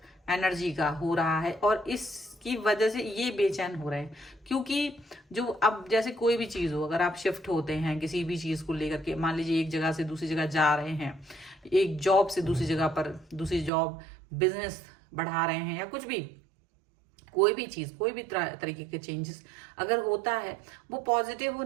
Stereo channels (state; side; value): drops out; left; at 13.7 s